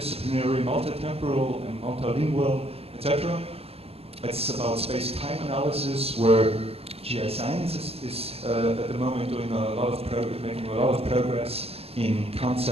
multitemporal, and multilingual, etc. It's about space-time analysis, where GI science is at the moment doing making a lot of progress in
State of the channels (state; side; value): late; left; 0.29 ms